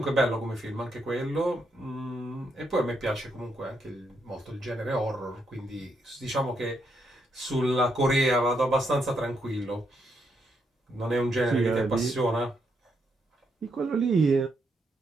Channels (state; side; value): normal; both; correlation 0.78